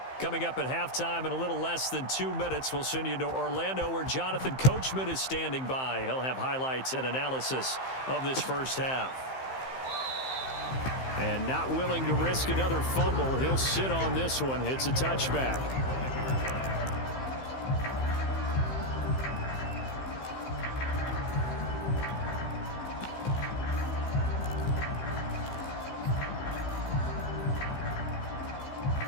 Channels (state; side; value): late; right; 15 ms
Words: Coming up at halftime in a little less than 2 minutes, we'll send you to Orlando where Jonathan Coachman is standing by. He'll have highlights and analysis of this first half. And not willing to risk another fumble, he'll sit on this one. It's a touchback.